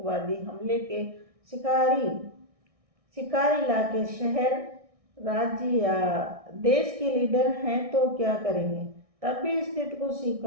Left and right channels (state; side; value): late; left; 1.6 ms